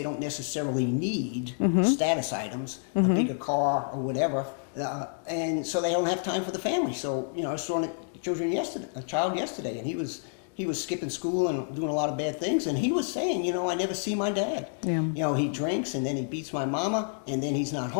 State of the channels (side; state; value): right; silent; digital silence